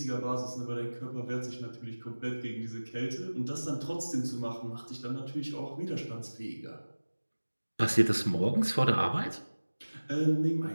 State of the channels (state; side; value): inverted; both; correlation -1.00